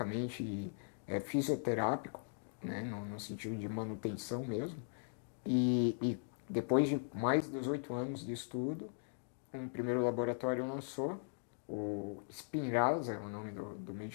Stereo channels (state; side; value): silent; right; digital silence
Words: fisioterápico, né? No sentido de manutenção mesmo. E depois de mais de 18 anos de estudo, um primeiro laboratório lançou o Spinraza, é o nome do